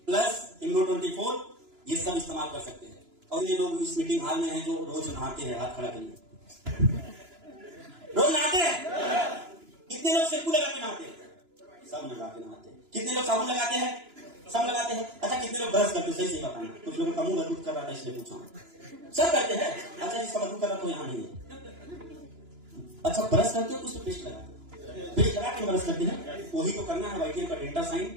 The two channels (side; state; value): left; late; 2.9 ms